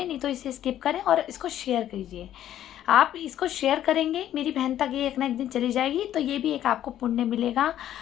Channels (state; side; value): quieter; right; 11.7 dB